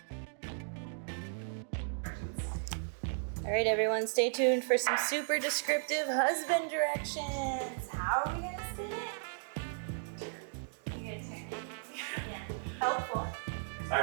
All right, everyone, stay tuned for some super descriptive husband directions. How are we gonna spin it? You're gonna turn it. Yeah, helpful. All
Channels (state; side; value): silent; left; digital silence